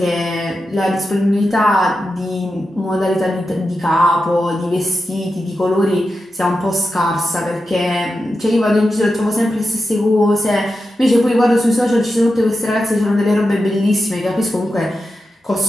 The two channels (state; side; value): normal; both; correlation 0.90